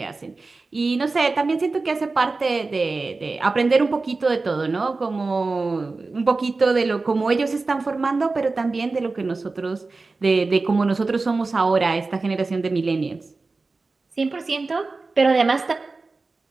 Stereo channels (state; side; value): quieter; left; 3.8 dB